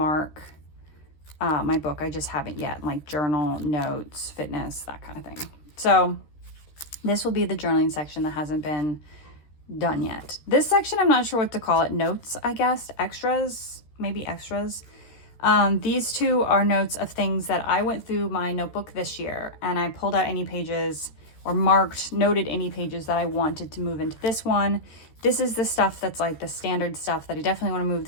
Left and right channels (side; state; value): right; late; 13 ms